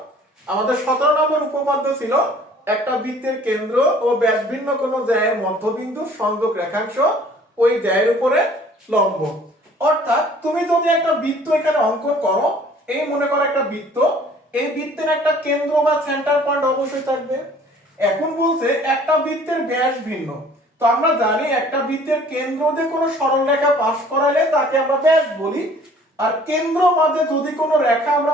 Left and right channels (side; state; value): both; normal; correlation 0.53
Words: আমাদের 17 নম্বর উপপাদ্য ছিল একটা বৃত্তের কেন্দ্র ও ব্যাসভিন্ন কোন জ্যায়ের মধ্যবিন্দু সংযোগ রেখাংশ ওই জ্যায়ের উপরে লম্ব। অর্থাৎ তুমি যদি একটা বৃত্ত এখানে অঙ্কন করো, এই মনে করো একটা বৃত্ত, এই বৃত্তের একটা কেন্দ্র বা সেন্টার পয়েন্ট অবশ্যই থাকবে। এখন বলছে একটা বৃত্তের ব্যাস ভিন্ন, তো আমরা জানি একটা বৃত্তের কেন্দ্র দিয়ে কোনো সরল রেখা পাস করালে তাকে আমরা ব্যাস বলি, আর কেন্দ্র মাঝে যদি কোনো রেখা আমরা